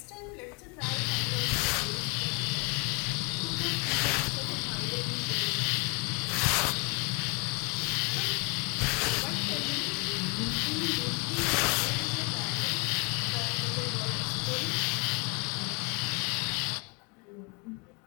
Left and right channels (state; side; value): quieter; right; 32.6 dB